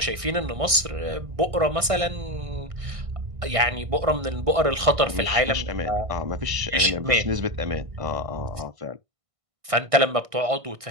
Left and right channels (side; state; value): left; late; 1.6 ms